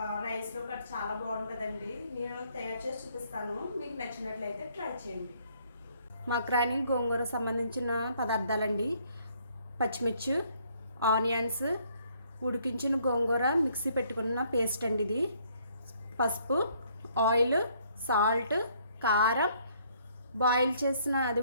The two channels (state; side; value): inverted; both; correlation -0.65